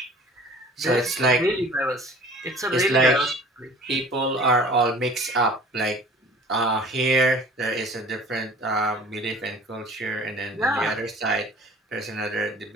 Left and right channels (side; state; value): both; normal; correlation 0.47